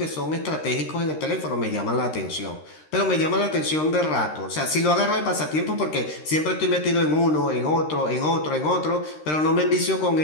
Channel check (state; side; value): late; right; 13 ms